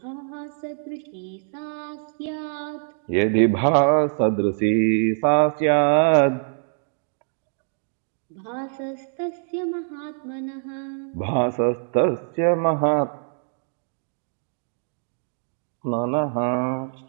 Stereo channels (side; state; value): left; silent; digital silence